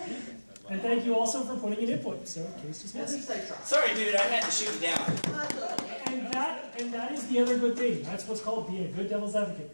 And thank you also for putting in input. So, case At dismissed. least I tried. Sorry, dude, I had to shoot you down. And that is the other good thing. That's what's called being a good devil's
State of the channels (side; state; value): both; inverted; correlation -1.00